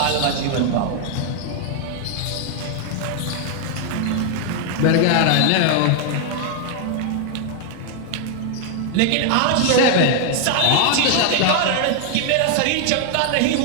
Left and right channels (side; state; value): both; different; correlation 0.00